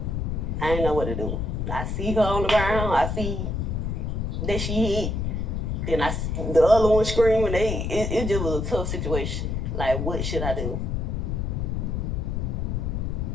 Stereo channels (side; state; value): left; noise; rumble, 1 dB below the sound